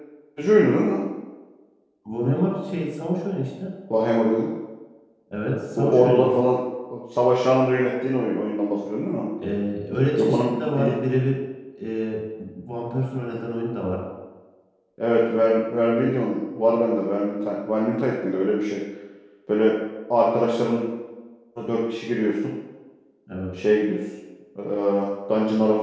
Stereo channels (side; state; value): both; identical; correlation 1.00